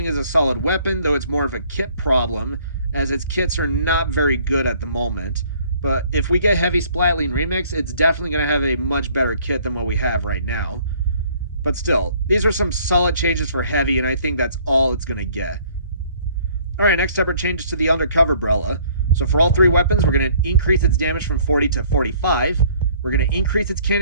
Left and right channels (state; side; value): inverted; both; correlation -0.59